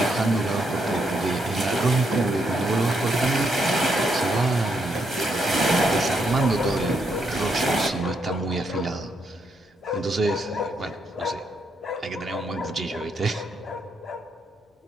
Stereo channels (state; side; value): normal; both; correlation 0.77